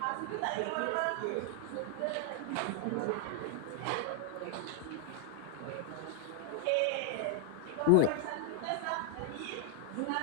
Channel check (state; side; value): different; both; correlation 0.00